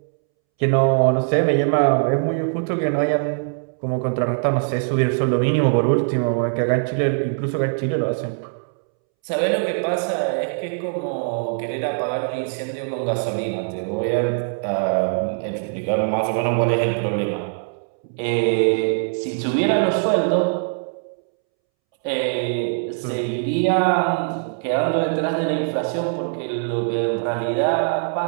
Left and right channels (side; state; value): left; silent; 64 dB below the other